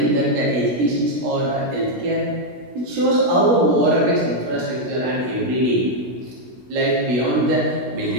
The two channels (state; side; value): late; left; 16 ms